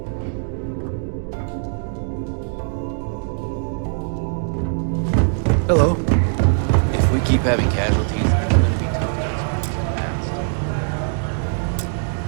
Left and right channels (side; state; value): left; silent; digital silence